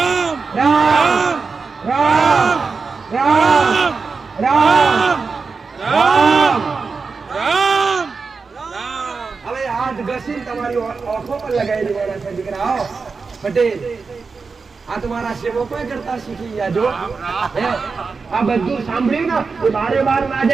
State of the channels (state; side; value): quieter; left; 4.7 dB